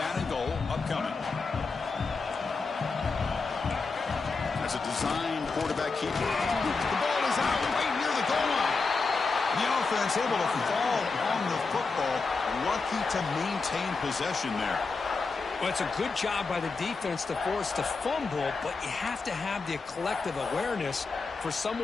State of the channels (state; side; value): quieter; right; 4.3 dB